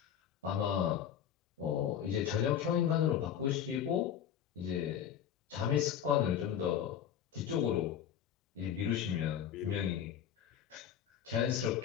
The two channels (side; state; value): right; quieter; 9.3 dB